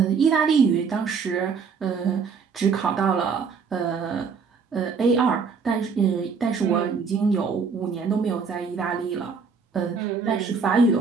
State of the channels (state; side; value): quieter; left; 5.5 dB